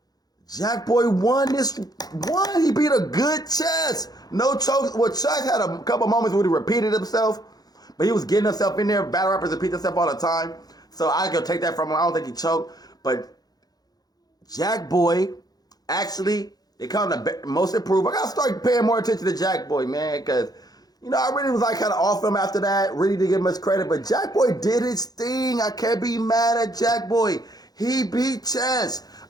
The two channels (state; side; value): late; right; 0.19 ms